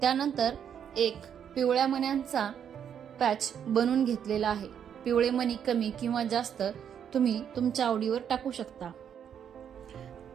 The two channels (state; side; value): quieter; left; 8.5 dB